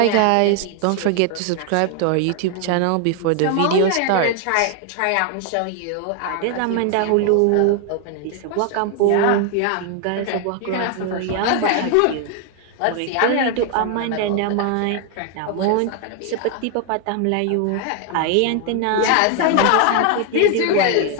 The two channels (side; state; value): both; different; correlation 0.00